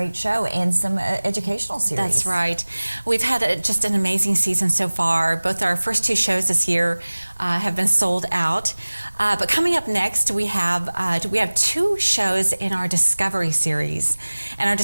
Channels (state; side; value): inverted; both; correlation -1.00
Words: show and some educational series. That's right. We've had just an amazing season so far. Both our first two shows this year have been sold out. But coming up next, we have two shows in our Discovery Series. And our